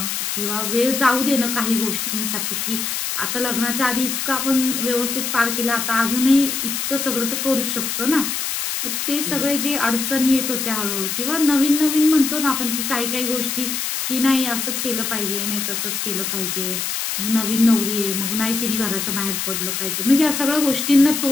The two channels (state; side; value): noise; left; hiss, 2 dB below the sound